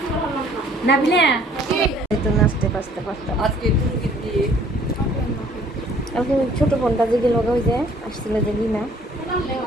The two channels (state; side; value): normal; both; correlation 0.57